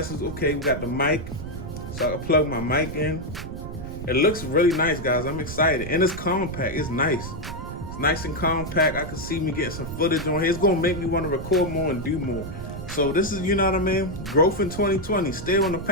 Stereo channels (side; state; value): right; noise; rumble, 9 dB below the sound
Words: it's okay. We got the mic, so I can plug my mic in. It looks really nice, guys. I'm excited. And it's compact. It's nice. It's nice and compact. I can see me getting some footage on here. It's going to make me want to record more and do more. So this is, you know what I mean? Growth in 2020. Still in the